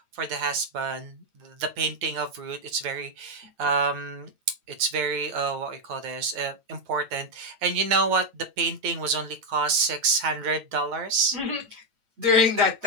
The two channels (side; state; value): left; late; 8.9 ms